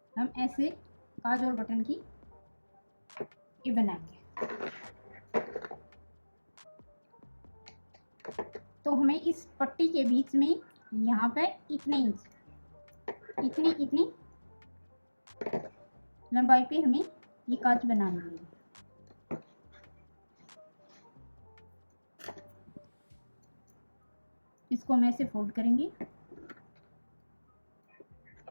हम ऐसे काज और बटन की ये बनाएंगे। तो हमें इस पट्टी के बीच में यहाँ पे इतने इंच इतनी लंबाई पे हमें ये काज बनानी है। इसको हम ऐसे फोल्ड करेंगे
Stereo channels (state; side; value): inverted; both; correlation -1.00